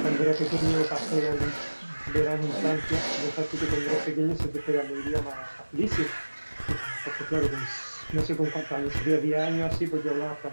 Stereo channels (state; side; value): inverted; both; correlation -1.00